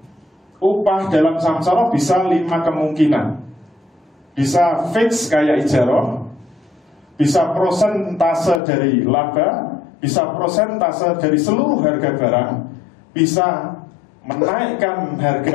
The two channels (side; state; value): right; drops out; at 8.6 s